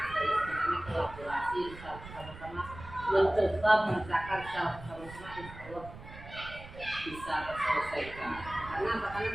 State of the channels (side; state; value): right; noise; rumble, 15 dB below the sound